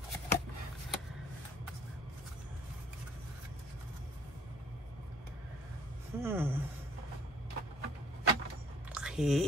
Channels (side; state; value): both; normal; correlation 0.56